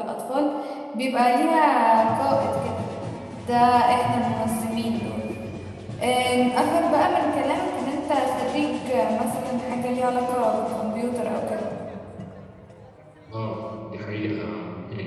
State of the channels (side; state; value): both; identical; correlation 1.00